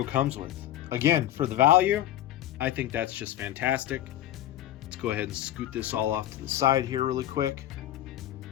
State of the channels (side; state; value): right; quieter; 13.2 dB